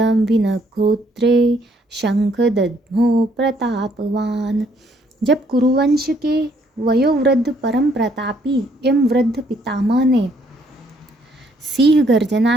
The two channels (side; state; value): both; normal; correlation 0.67